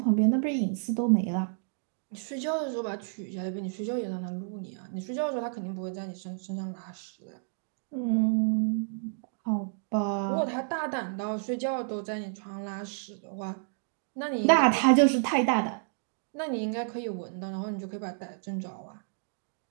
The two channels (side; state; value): left; silent; digital silence